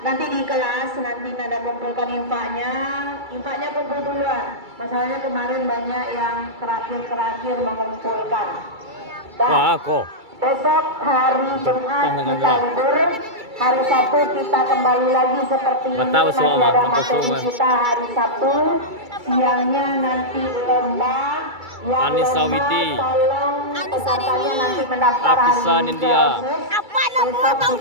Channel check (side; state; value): left; late; 2.3 ms